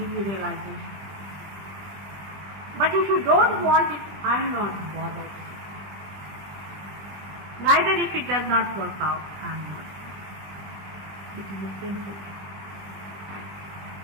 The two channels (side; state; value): left; late; 20 ms